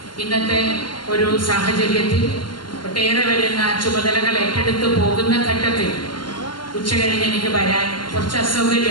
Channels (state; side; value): late; right; 0.72 ms